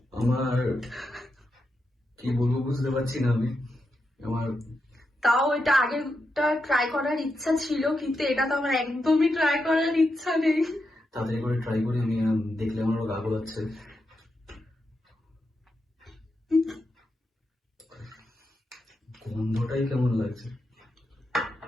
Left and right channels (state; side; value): normal; both; correlation 0.86